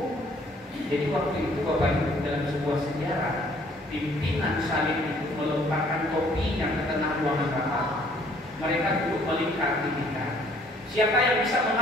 Jadi waktu itu Bapak Ibu dalam sebuah sejarah, pimpinan salib itu melemparkan topinya ke tengah ruangan rapat. Mereka duduk melingkar di tingkat. Siapa yang bisa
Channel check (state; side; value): normal; both; correlation 0.60